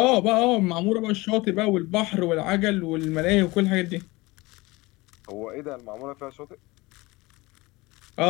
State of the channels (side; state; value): right; quieter; 22.3 dB